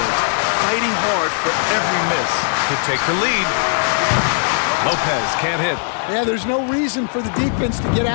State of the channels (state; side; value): silent; right; digital silence